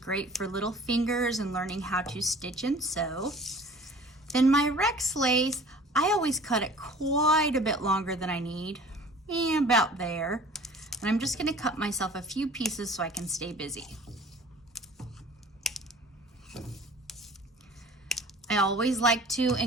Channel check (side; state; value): both; normal; correlation 0.46